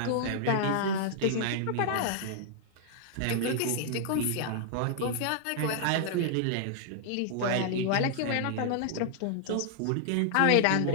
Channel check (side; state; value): both; different; correlation -0.01